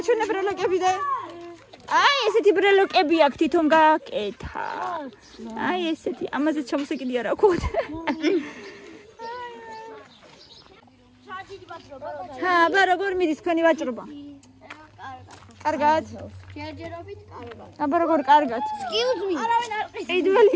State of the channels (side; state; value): both; identical; correlation 1.00